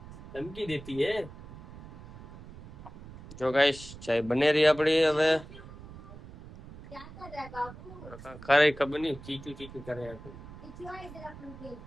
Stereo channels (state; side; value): noise; right; rumble, 15 dB below the sound